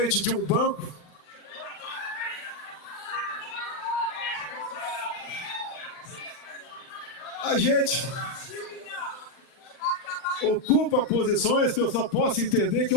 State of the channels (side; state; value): right; late; 39 ms